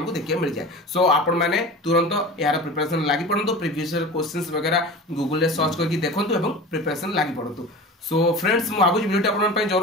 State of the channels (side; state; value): both; normal; correlation 0.34